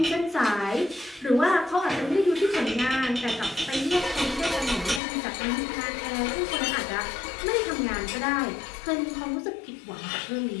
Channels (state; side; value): drops out; right; at 5.0 s